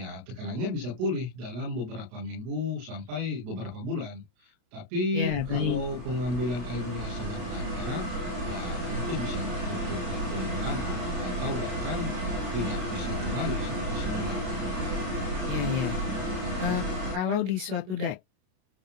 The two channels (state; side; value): late; left; 32 ms